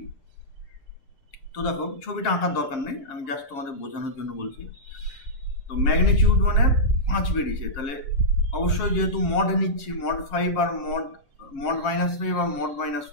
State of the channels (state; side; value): late; right; 7.3 ms